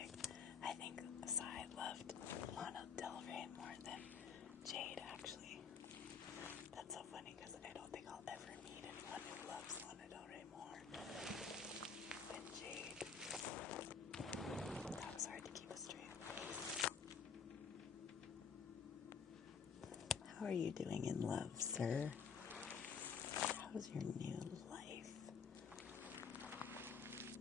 I think Sai loved Lana Del Rey more than Jade, actually. That's so funny because I don't think I'll ever meet anyone who loves Lana Del Rey more than Jade. That was hard to keep a straight. How are you doing in love, sir? How's your new life?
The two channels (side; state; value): right; quieter; 6.0 dB